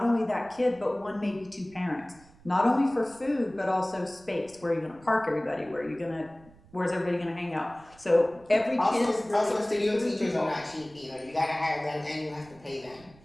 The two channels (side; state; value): right; noise; rumble, 25 dB below the sound